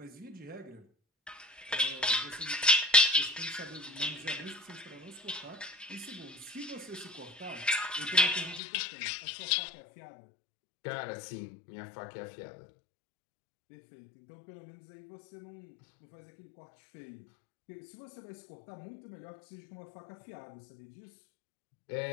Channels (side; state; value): right; drops out; at 8.6 s